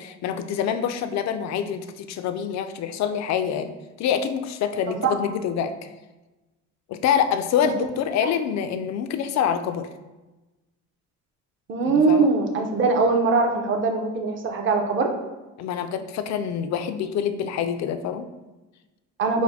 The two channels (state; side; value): normal; both; correlation 0.03